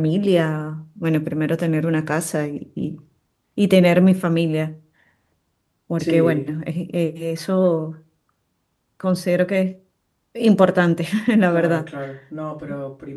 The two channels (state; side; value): identical; both; correlation 1.00